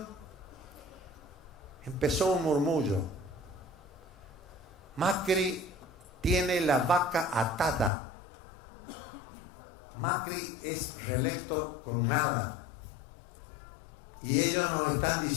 empezó un murmullo. Macri tiene la vaca atada. Macri es reelecto con nada. Y ellos nos están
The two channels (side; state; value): right; drops out; at 7.9 s